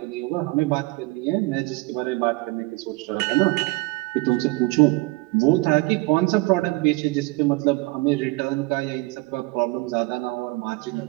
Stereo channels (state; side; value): quieter; left; 23.1 dB